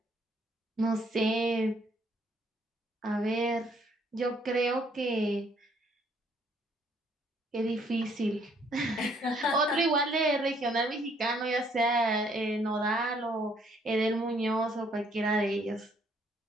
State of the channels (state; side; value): normal; both; correlation 0.66